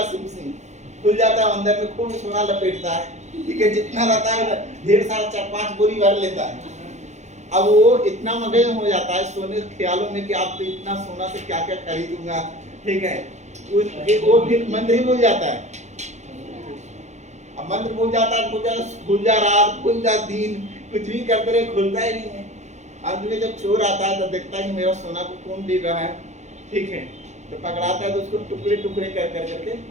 सिंह सिंह, खुल जाता है, अंदर में खूब सोना लपेटता है। ठीक है, जितना रहता है ढेर सारा 4-5 बोरी भर लेता है। अब वो इतना मगन हो जाता है सोने के ख्यालों में कि आप तो इतना सोना से क्या क्या खरीदूंगा। ठीक है, वो फिर मंत्र ही भूल जाता है। अब मंत्र भूल जाता है, खुल जा रात, खुल जा दिन, कुछ भी करते रहे खुलता ही नहीं है। अंत में जब चोर आता है तो देखता है कि मेरा सोना को कौन ले रहा है। ठीक है, तो पकड़ाता है तो उसको टुकड़े टुकड़े कर कर करके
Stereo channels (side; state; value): left; late; 0.33 ms